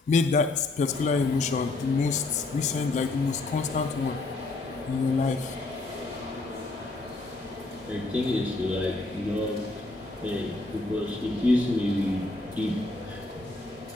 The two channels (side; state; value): right; quieter; 3.1 dB